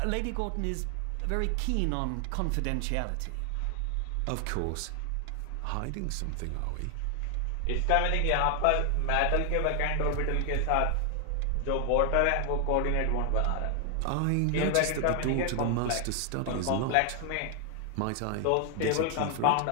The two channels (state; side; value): different; both; correlation 0.00